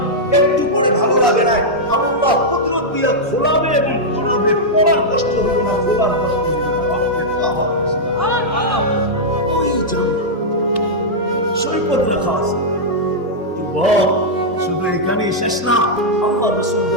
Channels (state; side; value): normal; both; correlation -0.06